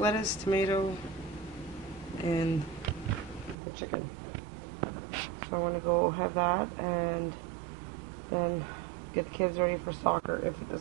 tomato, and the chicken. So I want to go have that and then get the kids ready for soccer if it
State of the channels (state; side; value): drops out; left; at 3.6 s